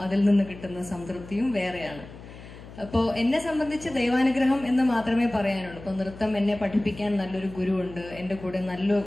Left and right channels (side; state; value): left; noise; hum, 16 dB below the sound